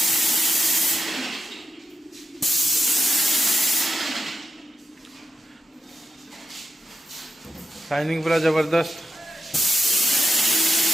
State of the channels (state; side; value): normal; both; correlation 0.88